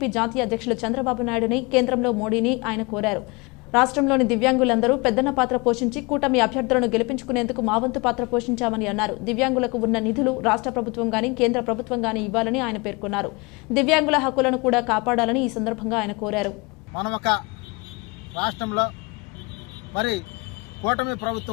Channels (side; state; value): right; quieter; 26.8 dB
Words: జాతీయ అధ్యక్షులు చంద్రబాబు నాయుడుని, కేంద్రంలో మోడీని ఆయన కోరారు. రాష్ట్రంలోని దివ్యాంగులందరూ పెద్దన్న పాత్ర పోషించి కూటమి అభ్యర్థులను గెలిపించుకునేందుకు మా వంతు పాత్ర పోషించామని అన్నారు. దివ్యాంగులకు ఉన్న నిధులు రాష్ట్ర ప్రభుత్వం గానీ కేంద్ర ప్రభుత్వం గానీ ఇవ్వాలని ఆయన పేర్కొన్నారు. దివ్యాంగుల హక్కులను కూడా కాపాడాలని ఈ సందర్భంగా ఆయన కోరారు. మనం ఒక రాష్ట్రంలో మరి కూటమి